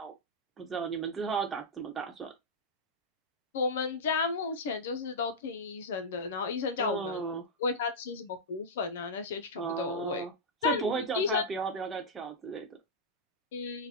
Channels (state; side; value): normal; both; correlation -0.07